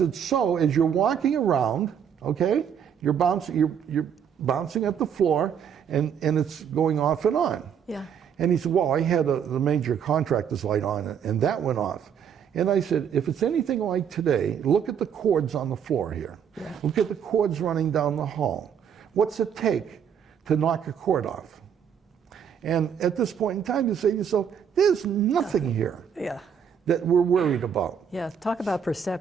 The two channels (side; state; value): left; quieter; 7.9 dB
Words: so as you're walking around, okay, you're bouncing at the floor and it's going off and on. Yeah. And he said, well, I had the major contractor's light on and that went off. And I said, if it's anything like today, look at the cords on the floor here. Yeah. Look at the cords running down the hall. What's it take to knock a cord off? And at this point in time, you say to yourself, there's nothing here Yeah. that we're worried about. Yeah. Talk about